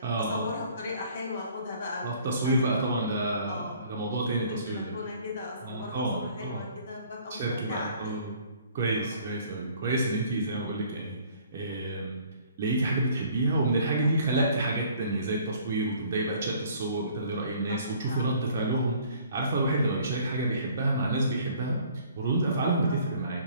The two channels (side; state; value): both; inverted; correlation -0.56